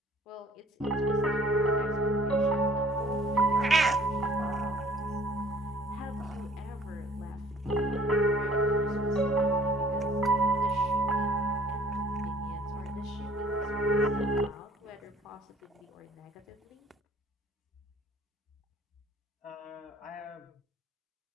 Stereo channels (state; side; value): normal; both; correlation 0.55